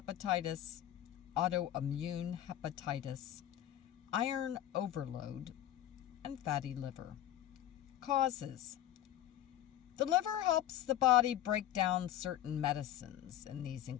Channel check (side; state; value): right; quieter; 12.2 dB